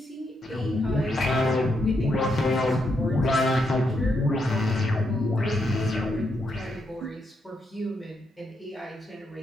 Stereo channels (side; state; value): both; normal; correlation 0.80